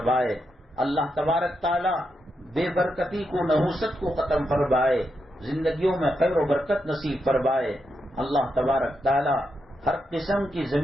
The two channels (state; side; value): normal; both; correlation 0.84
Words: اللہ تبارک تعالیٰ بے برکتی کو، نحوست کو ختم فرمائے، زندگیوں میں خیر و برکت نصیب فرمائے۔ اللہ تبارک تعالیٰ ہر قسم کی